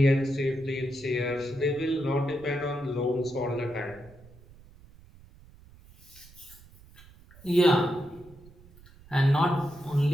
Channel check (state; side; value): noise; right; rumble, 23 dB below the sound